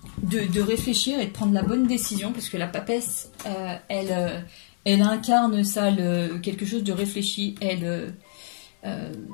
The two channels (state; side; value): silent; right; 61 dB below the other